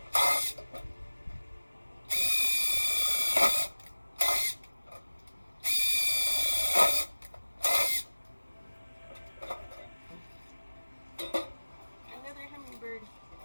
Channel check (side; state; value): both; inverted; correlation -1.00